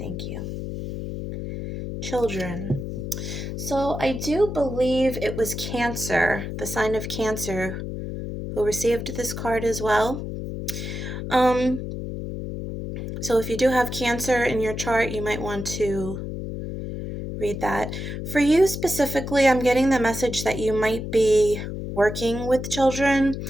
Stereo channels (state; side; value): noise; left; hum, 6 dB below the sound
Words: you. Children. So I do believe it was Cancer, the sign of Cancer, who received this card as well. So if you do have Cancer in your chart, you might want to read that. For you specifically, I'm getting the message that you might be working with children